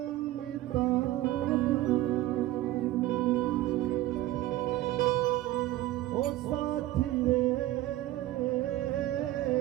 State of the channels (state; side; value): quieter; left; 15.5 dB